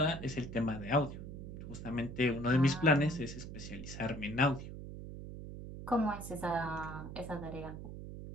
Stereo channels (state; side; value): noise; right; hum, 10 dB below the sound